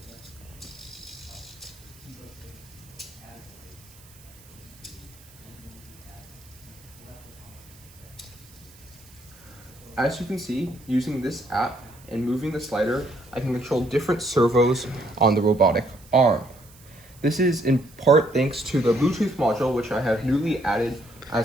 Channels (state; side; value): noise; right; hiss, 24 dB below the sound